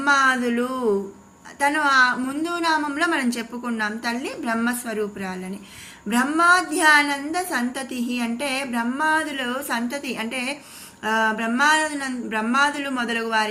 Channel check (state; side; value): identical; both; correlation 1.00